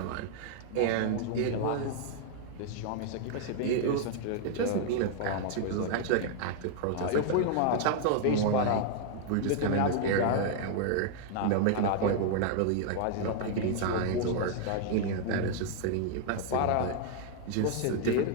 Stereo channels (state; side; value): different; both; correlation -0.01